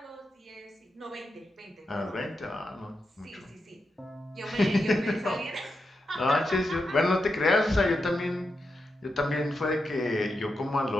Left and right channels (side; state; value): both; normal; correlation 0.87